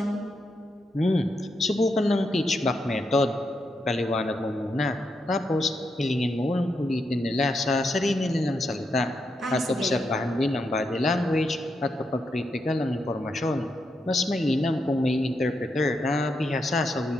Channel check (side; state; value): both; normal; correlation 0.83